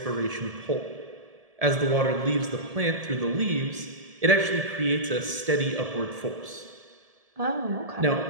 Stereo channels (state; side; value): late; left; 1.7 ms